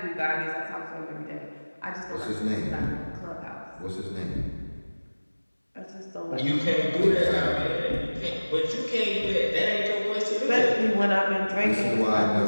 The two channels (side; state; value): both; inverted; correlation -1.00